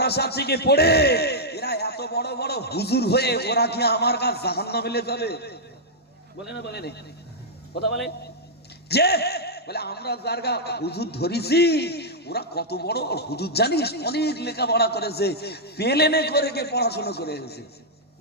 থেকে পড়ে, এরা এত বড় বড় হুজুর হয়ে ওরা কি আমার কাছে জাহান্নামে চলে যাবে? বলে না, বলে না, কথা বলে, যে বলে আমরা যারগা হুজুর ধরেছি, ওরা কত বড় হুজুর জানিস, অনেক লেখাপড়া করেছে, পেলেনে করে কে পড়াশোনা করে এসেছে,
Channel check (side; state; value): both; normal; correlation -0.07